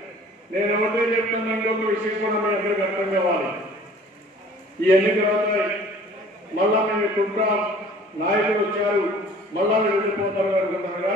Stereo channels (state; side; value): normal; both; correlation 0.50